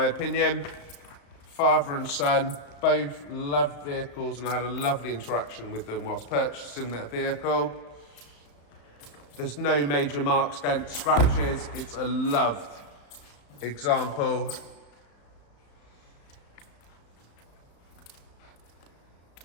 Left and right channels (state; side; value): late; right; 35 ms